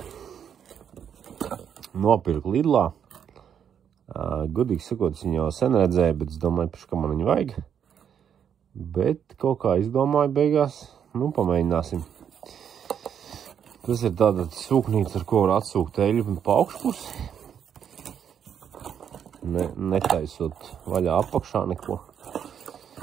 Nopirku Lidlā. Godīgi sakot, es viņu jau sen redzēju, bet es domāju, ka man viņu vajag. Bet kaut kā izdomāju beigās, pamēģināsim. Tas ir tāda sūknīca, ar ko var atsūkt eļļu pa augšpusi. Netaisot vaļā apakšā neko.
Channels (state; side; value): quieter; left; 8.4 dB